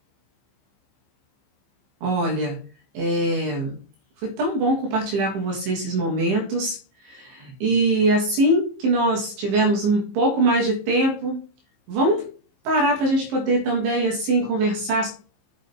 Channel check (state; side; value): late; left; 15 ms